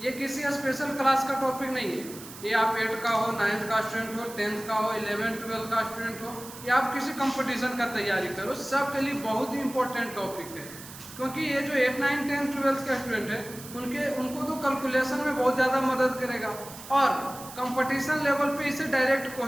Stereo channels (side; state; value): right; noise; hiss, 15 dB below the sound